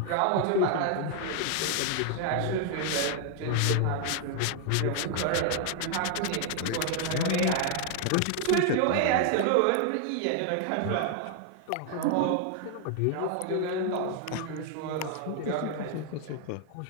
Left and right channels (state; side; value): different; both; correlation 0.00